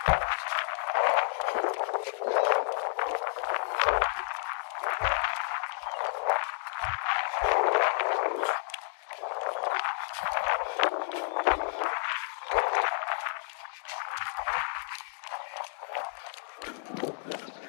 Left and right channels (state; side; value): silent; right; digital silence